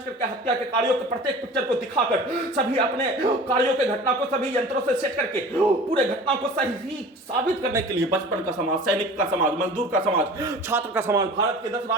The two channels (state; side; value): normal; both; correlation 0.41